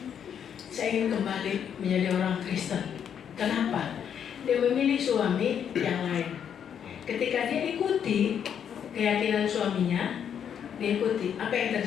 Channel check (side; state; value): right; quieter; 8.4 dB